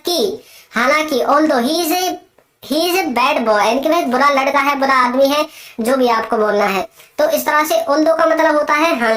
हालांकि although he is a bad boy, यानी कि वह बुरा लड़का है, बुरा आदमी है, जो भी आपको बोलना है। तो इस तरह से ऑल्दो का मतलब होता है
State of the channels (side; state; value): both; identical; correlation 1.00